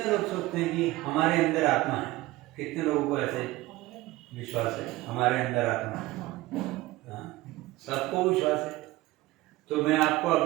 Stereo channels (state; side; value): quieter; left; 18.4 dB